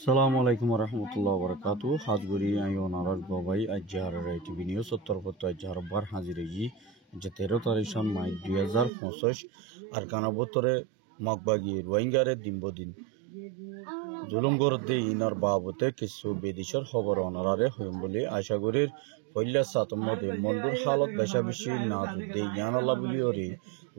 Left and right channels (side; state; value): left; drops out; at 8.9 s